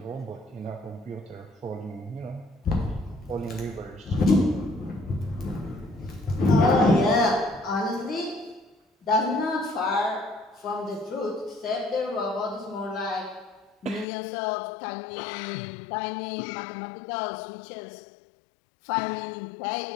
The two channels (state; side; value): drops out; right; at 14.1 s